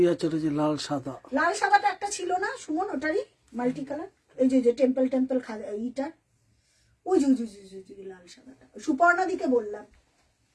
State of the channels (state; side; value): identical; both; correlation 1.00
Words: চলেছে লাল সাদা। লাল সাদাটা একটা ছিল না সুমন, ওটারই মাল্টি কালার, এই যে টেম্পল টেম্পল ইটার, ওই যে লাল সাদাটা। সুপর্ণা দিকে বললাম,